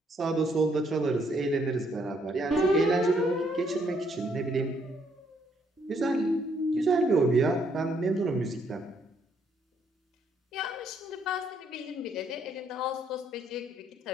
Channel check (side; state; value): both; normal; correlation 0.70